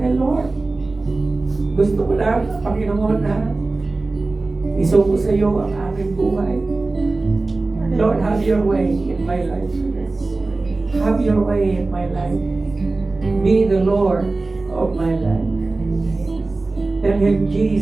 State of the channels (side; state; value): left; quieter; 3.4 dB